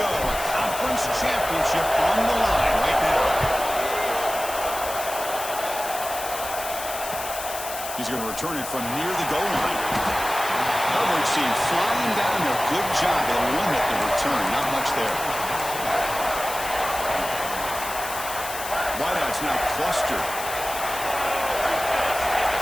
A conference championship on the line right now. He's going to return it from near the goal line. Coverage team flying down there. Good job. They'll limit the return. Not much there. Wideouts now clustered.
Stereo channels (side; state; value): left; noise; hiss, 8 dB below the sound